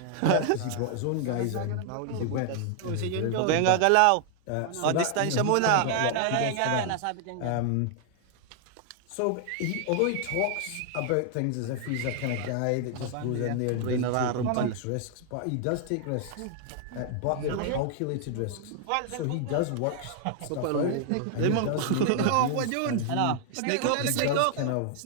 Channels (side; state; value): both; different; correlation 0.00